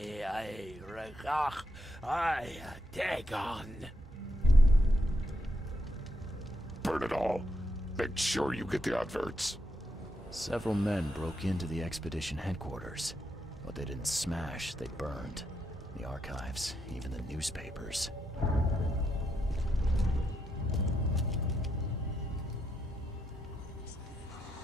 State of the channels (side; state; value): both; normal; correlation 0.81